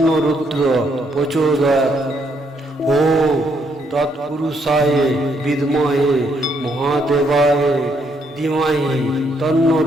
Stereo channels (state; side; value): normal; both; correlation 0.73